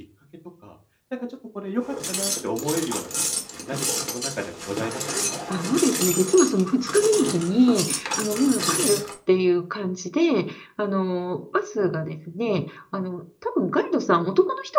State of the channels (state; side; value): identical; both; correlation 1.00